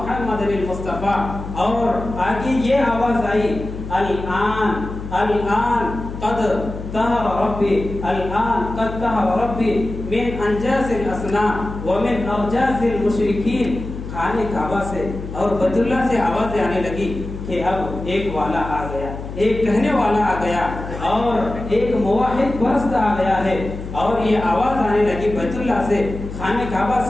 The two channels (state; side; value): noise; left; hum, 9 dB below the sound